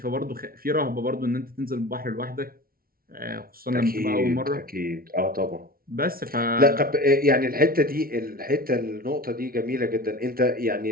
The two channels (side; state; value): left; late; 0.43 ms